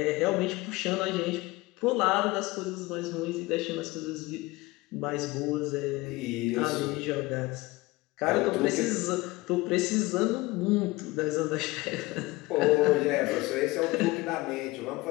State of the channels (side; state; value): right; quieter; 21.3 dB